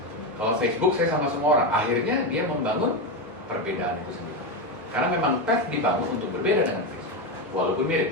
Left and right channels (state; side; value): normal; both; correlation 0.12